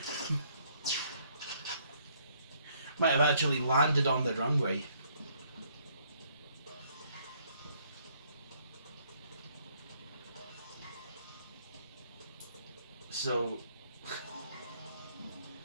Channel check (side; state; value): both; inverted; correlation -0.67